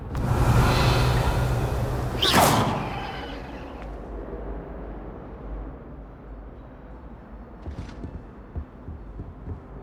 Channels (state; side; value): identical; both; correlation 1.00